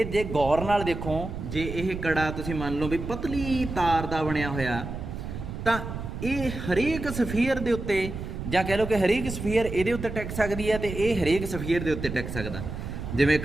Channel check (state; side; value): noise; right; rumble, 7 dB below the sound